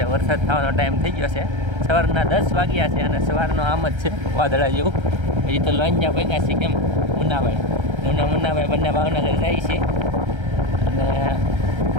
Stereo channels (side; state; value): left; late; 1.3 ms